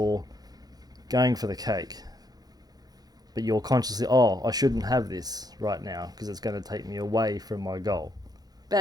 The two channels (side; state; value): left; late; 0.19 ms